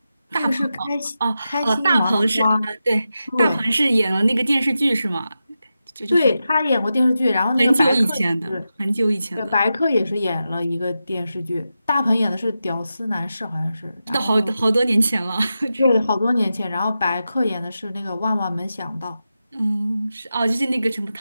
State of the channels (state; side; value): inverted; both; correlation -0.90